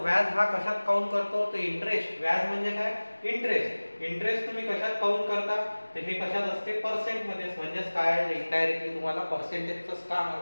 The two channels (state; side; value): inverted; both; correlation -1.00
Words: हा कशात काउंट करतो? तर इंटरेस्ट. व्याज म्हणजे काय? इंटरेस्ट. इंटरेस्ट तुम्ही कशात काउंट करता? तर हे कशात असते? पर्सेंट मध्ये. म्हणजेच काय? इनडायरेक्टली तुम्हाला पर्सेंटेजच काम